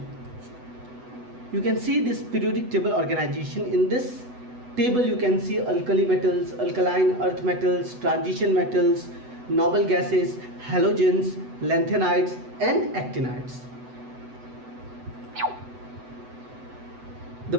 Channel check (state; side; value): late; left; 8.0 ms